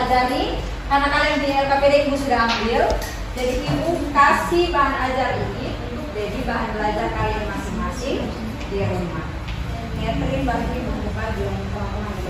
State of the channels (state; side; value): identical; both; correlation 1.00